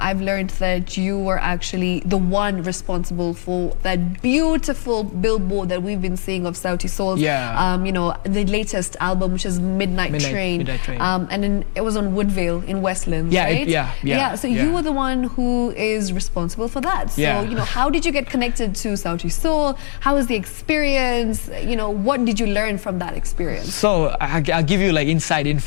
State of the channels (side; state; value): right; silent; digital silence